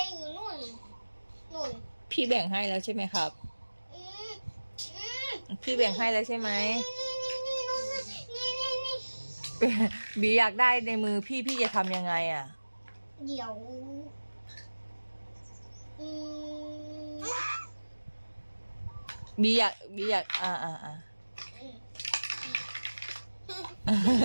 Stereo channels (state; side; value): inverted; both; correlation -1.00